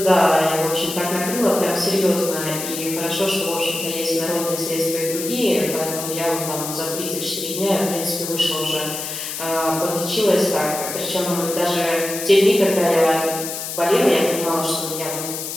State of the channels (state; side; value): noise; left; hiss, 6 dB below the sound